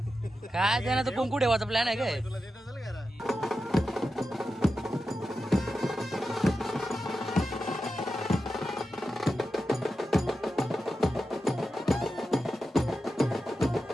काय त्यानं तर कुंकू ठेवायचा प्लॅन आहे काय.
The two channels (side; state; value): both; normal; correlation 0.90